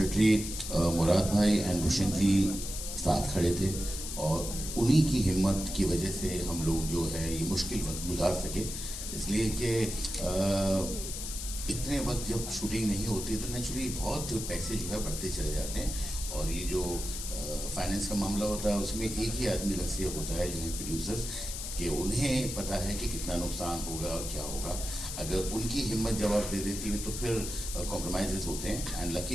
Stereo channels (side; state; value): left; noise; hiss, 6 dB below the sound